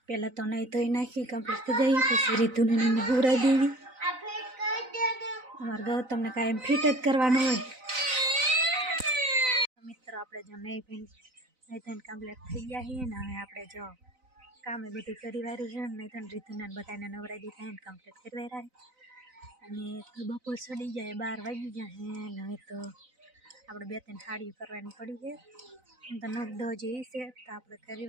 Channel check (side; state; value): left; late; 3.9 ms